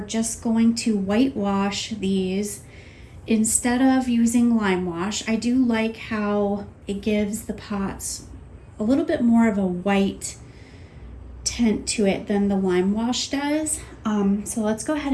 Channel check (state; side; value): identical; both; correlation 1.00